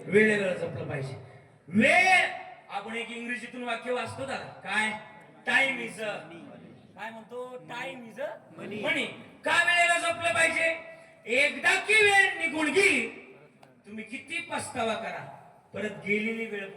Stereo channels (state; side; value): identical; both; correlation 1.00